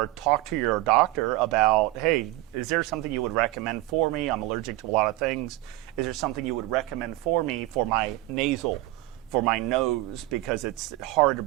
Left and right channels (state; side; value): quieter; left; 17.8 dB